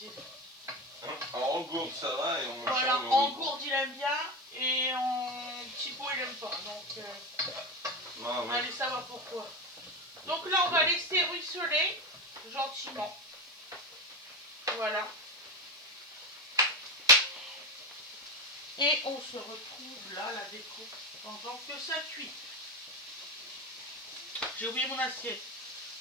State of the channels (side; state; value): left; noise; hiss, 28 dB below the sound